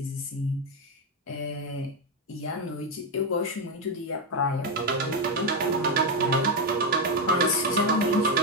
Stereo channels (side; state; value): both; normal; correlation 0.06